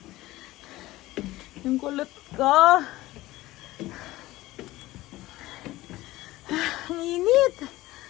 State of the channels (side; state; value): right; quieter; 17.7 dB